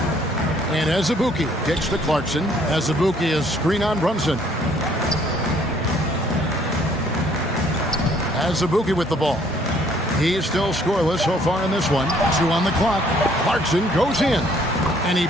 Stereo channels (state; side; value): normal; both; correlation 0.62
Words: And Azubuike kicks to Clarkson. Azubuike is screen on Brunson. Azubuike with the ball. He is still scoreless so far in this one. 2 on the clock. Clarkson goes in. And he